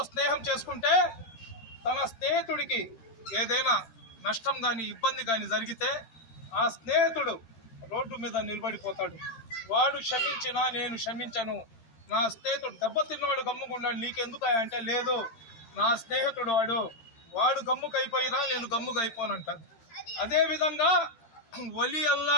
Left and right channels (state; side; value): late; right; 13 ms